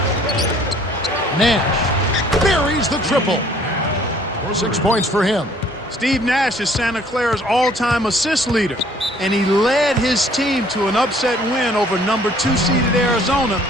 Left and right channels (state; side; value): normal; both; correlation 0.58